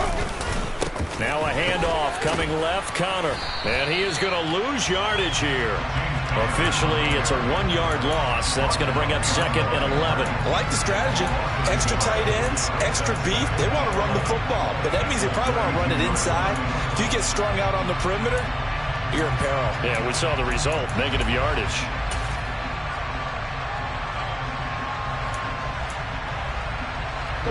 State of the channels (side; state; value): both; identical; correlation 1.00